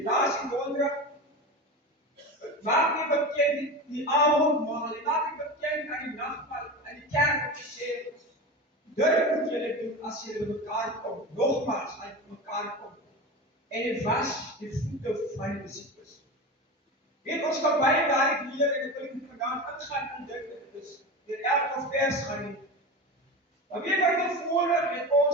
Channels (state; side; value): normal; both; correlation 0.26